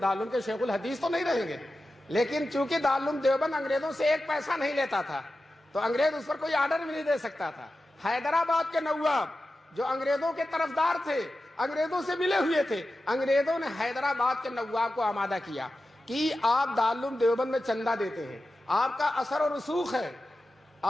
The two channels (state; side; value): normal; both; correlation 0.93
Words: کے شیخ الحدیث تو نہیں رہیں گے۔ لیکن چونکہ دارالعلوم دیوبند انگریزوں سے ایک پیسہ نہیں لیتا تھا تو انگریز اس پر کوئی آرڈر بھی نہیں دے سکتا تھا۔ حیدرآباد کے نواب جو انگریزوں کے طرفدار تھے، انگریزوں سے ملے ہوئے تھے، انگریزوں نے حیدرآباد کے نواب کو آمادہ کیا کہ آپ دارالعلوم دیوبند میں چندہ دیتے ہیں، آپ کا اثر و رسوخ ہے،